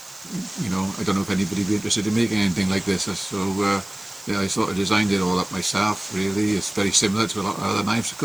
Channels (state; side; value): noise; right; hiss, 19 dB below the sound